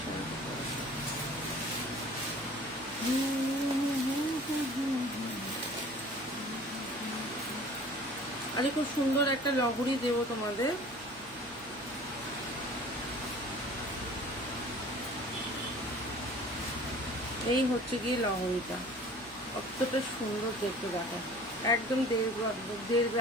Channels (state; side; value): noise; right; hum, 22 dB below the sound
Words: আরে খুব সুন্দর একটা লহরি দেবো তোমাদের। এই হচ্ছে গিয়ে লহরিটা, কতটা সুন্দর দেখতে দেখো, একদম 1.5